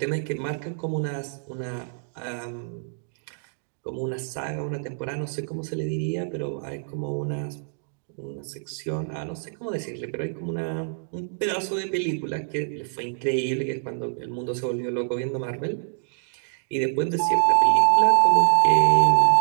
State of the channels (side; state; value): left; silent; digital silence